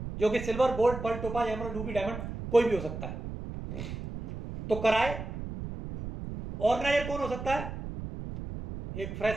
जो कि silver, gold, pearl, topaz, emerald, ruby, diamond कोई भी हो सकता है, तो कराए। ऑर्गेनाइजर कौन हो सकता है? एक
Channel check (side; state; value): right; noise; rumble, 8 dB below the sound